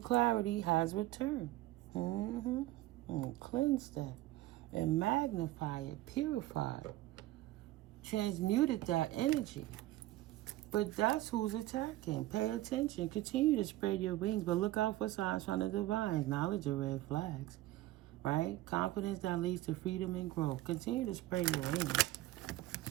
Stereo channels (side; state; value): left; quieter; 16.4 dB